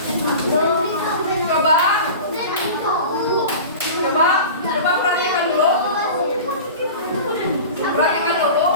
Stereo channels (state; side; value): inverted; both; correlation -0.35